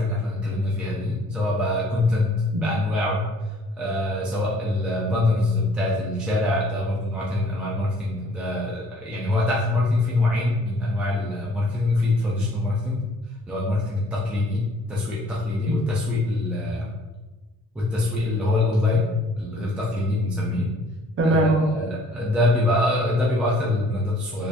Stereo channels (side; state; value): both; normal; correlation 0.57